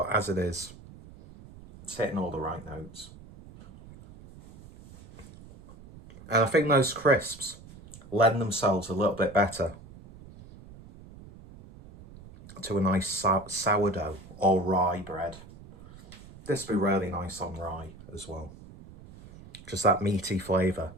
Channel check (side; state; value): right; noise; rumble, 19 dB below the sound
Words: as it is, it's hitting all the right notes. And I think those crisps lend themselves a little bit better to a nice sourdough or rye bread. This would be really nice on rye as well. Just that meaty flavour.